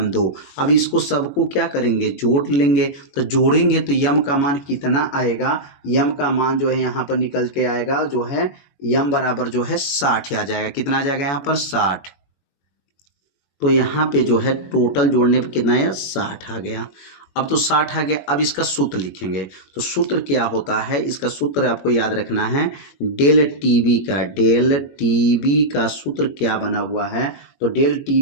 2। अब इसको सबको क्या करेंगे जोड़ लेंगे। तो जोड़ेंगे तो यम का मान कितना आएगा, यम का मान जो है यहाँ पर निकल के आएगा जो है यम बराबर जो है 60 आ जाएगा। कितना आ जाएगा यहाँ पर 60। तो यहाँ पे जो है टोटल जोड़ने पे कितना है 60 आ गया। अब तो 60 आ गया, अब इसका सूत्र लिखेंगे। तो सूत्र क्या होता है, इसका सूत्र आपको याद रखना है डेल टीबी का सूत्र क्या बना हुआ है। तो डेल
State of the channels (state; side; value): late; right; 21 ms